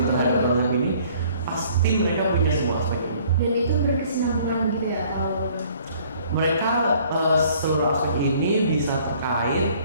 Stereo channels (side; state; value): both; inverted; correlation -0.57